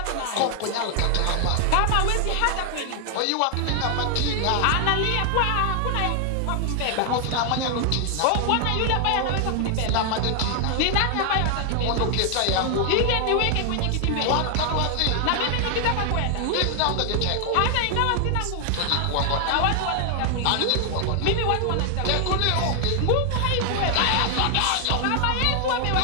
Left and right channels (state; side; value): different; both; correlation 0.00